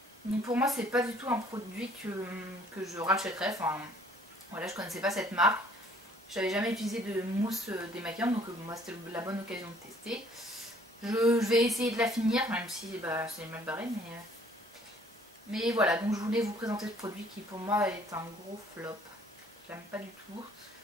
Donc pour moi, c'est pas du tout un produit que je rachèterais. Enfin, voilà, je connaissais pas cette marque. J'avais jamais utilisé de mousse démaquillante, donc moi c'était la bonne occasion de tester. Je vais essayer de la finir, même si bah, c'est mal barré, mais voilà, donc je voulais vous présenter ce produit qui pour moi est un gros flop. Je l'aime pas du tout,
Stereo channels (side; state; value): both; normal; correlation 0.59